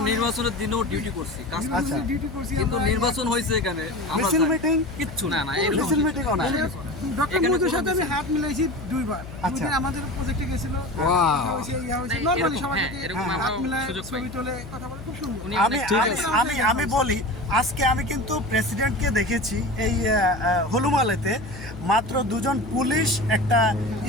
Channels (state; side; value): noise; left; hum, 13 dB below the sound